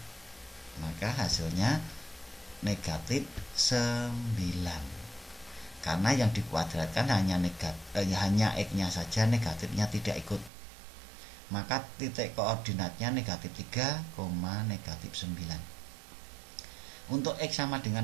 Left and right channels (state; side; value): drops out; left; at 10.5 s